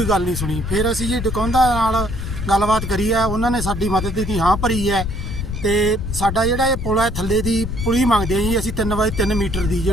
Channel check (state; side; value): noise; left; rumble, 5 dB below the sound